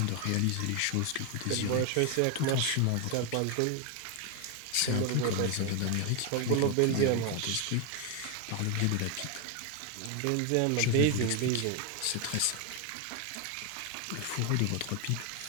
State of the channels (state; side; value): different; both; correlation 0.01